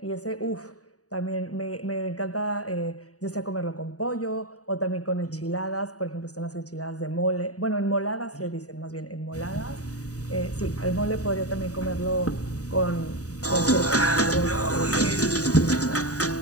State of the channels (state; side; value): late; right; 0.66 ms